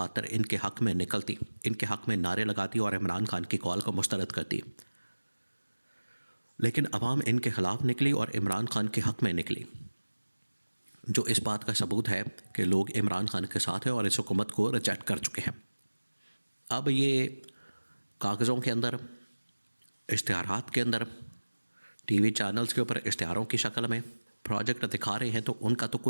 इनके हक़ में निकलती, इनके हक़ में नारे लगाती और इमरान खान की कॉल को मुस्तरद करती। लेकिन अवाम इनके ख़िलाफ़ निकली और इमरान खान के हक़ में निकली, जो इस बात का सबूत है कि लोग इमरान खान के साथ हैं और इस हुकूमत को रिजेक्ट कर चुके हैं। अब ये कागज़ों के अंदर, इश्तिहारात के अंदर, टीवी चैनल्स के ऊपर इश्तिहारों की शक्ल में प्रोजेक्ट दिखा रहे हैं, तो उनका तो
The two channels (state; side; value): inverted; both; correlation -1.00